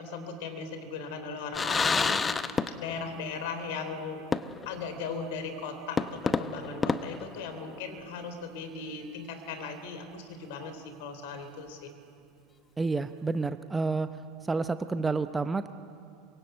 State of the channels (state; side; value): normal; both; correlation 0.69